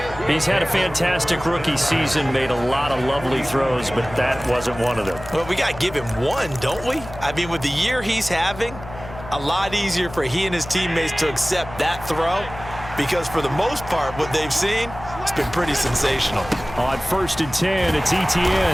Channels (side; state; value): left; noise; hum, 14 dB below the sound